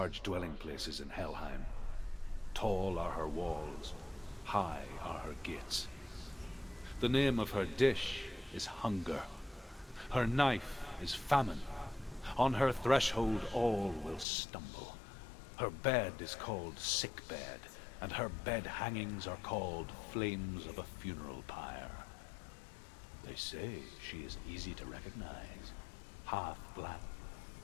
dwelling places in Helheim. Tall are her walls, high are her gates. The name of her dish is hunger. Her knife is famine. On her threshold all will stumble. Her bed is called sick bed, and her bed hangings are called flames of a funeral pyre. They say she is easy to recognize, half black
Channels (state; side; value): drops out; right; at 14.2 s